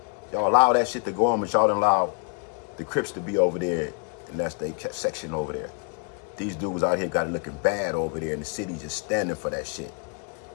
Y'all allow that shit to go on, but y'all don't allow the Crips to be over there, and that's their section over there. These dudes out here got it looking bad over there, and the city just standing for that shit.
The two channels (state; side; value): quieter; right; 38.7 dB